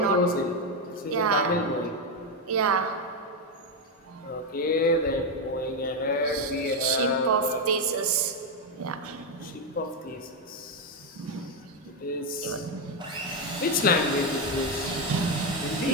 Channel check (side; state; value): both; normal; correlation 0.06